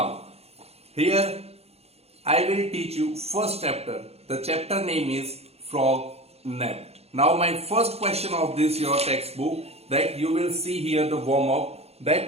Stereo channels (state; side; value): late; left; 0.30 ms